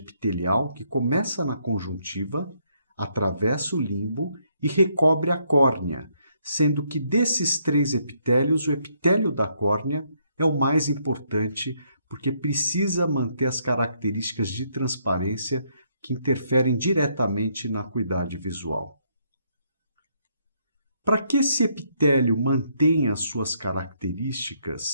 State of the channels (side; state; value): both; inverted; correlation -0.73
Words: que começa na conjuntiva, atravessa o limbo e recobre a córnea, sendo que desses três epitélios, o epitélio da córnea é o mais importante porque precisa manter as características de transparência que interferem diretamente na acuidade visual. Para que esse epitélio mantenha as suas